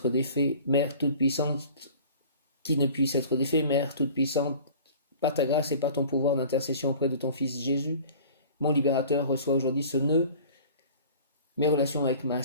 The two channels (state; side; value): inverted; both; correlation -0.45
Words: défait. Mère toute-puissante, qui ne puisse être défait. Mère toute-puissante, par ta grâce et par ton pouvoir d'intercession auprès de ton Fils Jésus, mon libérateur, reçoit aujourd'hui ce nœud mes relations avec ma